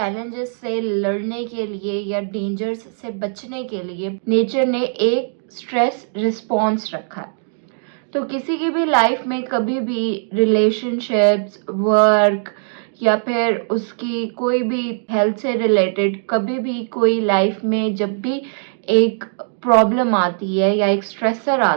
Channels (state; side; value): silent; left; digital silence